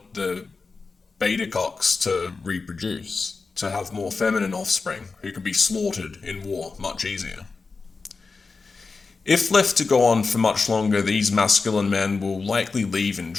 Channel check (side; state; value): right; quieter; 4.3 dB